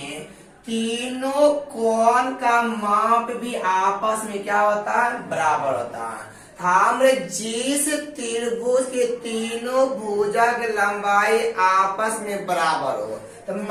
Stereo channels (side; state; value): both; identical; correlation 1.00